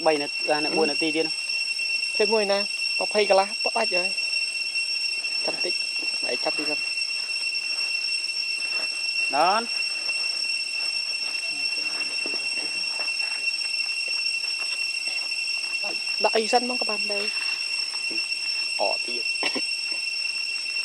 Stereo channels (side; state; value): both; identical; correlation 1.00